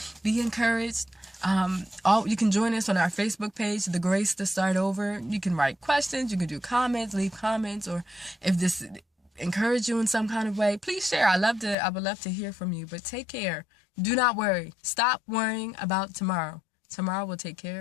Be encouraged. You can join us on our Facebook page, The Grace to Start Over. You can write questions. You can do comments, leave comments. Or if this encourage you in some kind of way, please share. I would love to hear from you. But take care. Do not worry. Stop worrying about tomorrow. Tomorrow will take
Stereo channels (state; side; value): drops out; right; at 11.8 s